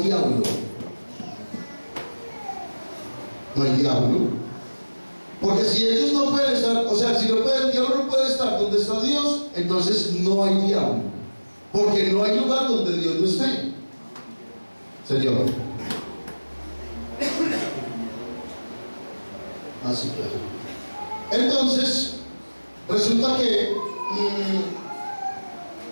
No hay diablo. Porque si ellos no pueden estar, o sea, si el diablo no puede estar donde está Dios, entonces no hay diablo. Porque no hay lugar donde Dios no esté. Señor. Así claro. Entonces, resulta que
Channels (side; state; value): both; inverted; correlation -1.00